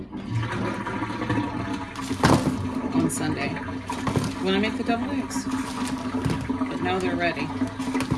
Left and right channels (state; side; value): identical; both; correlation 1.00